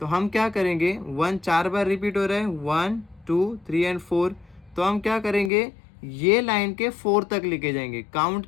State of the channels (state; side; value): drops out; right; at 5.5 s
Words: हम क्या करेंगे, 1 4 बार रिपीट हो रहा है, 1 2 3 एंड 4, तो हम क्या करेंगे, ये लाइन के 4 तक लेके जाएंगे, काउंट